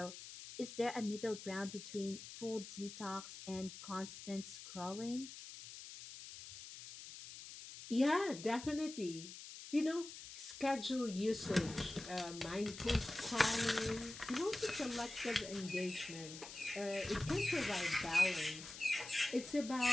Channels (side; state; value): left; noise; hiss, 12 dB below the sound